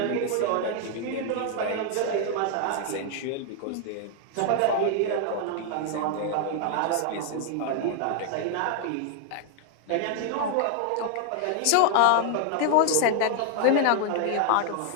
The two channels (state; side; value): different; both; correlation 0.00